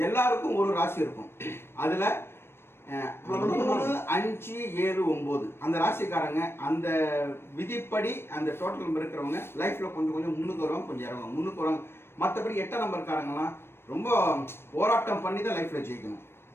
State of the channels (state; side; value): late; right; 0.12 ms